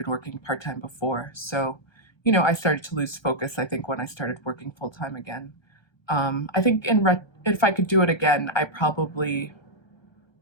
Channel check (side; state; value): right; late; 1.3 ms